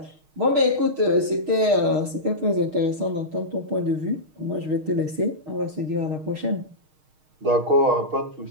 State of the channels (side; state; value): left; late; 6.5 ms